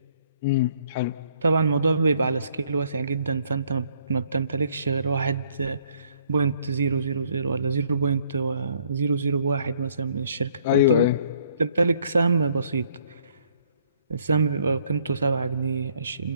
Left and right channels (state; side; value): inverted; both; correlation -0.64